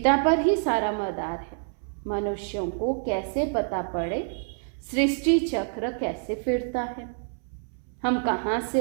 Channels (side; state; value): left; silent; 60 dB below the other